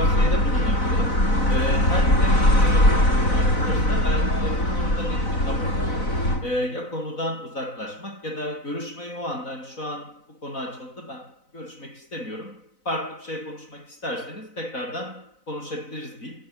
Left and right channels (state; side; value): late; right; 4.0 ms